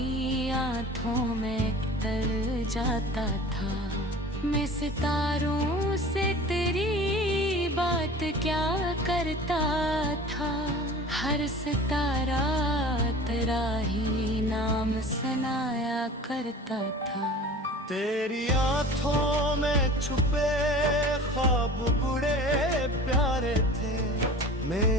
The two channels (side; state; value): both; normal; correlation 0.41